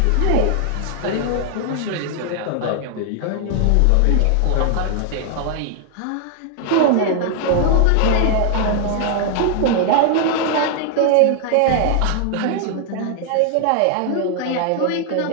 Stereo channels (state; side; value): different; both; correlation 0.00